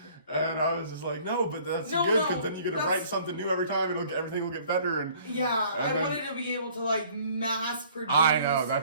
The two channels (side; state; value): both; inverted; correlation -0.55